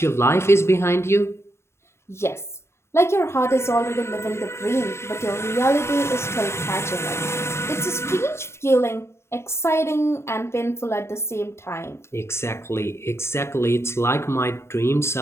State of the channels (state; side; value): late; right; 0.13 ms